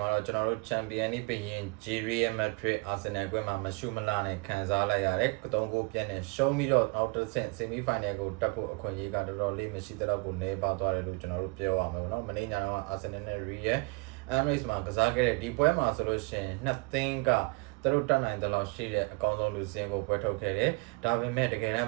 ှာတော့ကျွန်တော်တို့ Champions League ပြင် Real Madrid Arsenal ကွင်းမှာမရှိမလားနဲ့ခံစားလိုက်ရတယ်။3 ဂိုးပြတ်နဲ့ရှုံးပြီးတော့နောက်တစ်ဆင့် Semi Final ကိုတက်ဖို့အခွင့်အရေးကတော်တော်လေးမရှိတဲ့တော့ကိုနေပါသွားတယ်လို့ကျွန်တော်တို့ပြောရမှာပေါ့နော်။မနေ့ညတော့ Arsenal နဲ့ Real Emirates မှာကစားခဲ့တဲ့ဒီပွဲမှာဆိုလို့ရှိရင်2သင်းကသူတို့တက်နိုင်တဲ့လောက်ရှိတဲ့အကောင်းဆုံးလူစင်းကိုပွဲထုတ်ခဲ့တယ်။ဒါပေမဲ့တကယ်တမ်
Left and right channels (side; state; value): left; quieter; 28.9 dB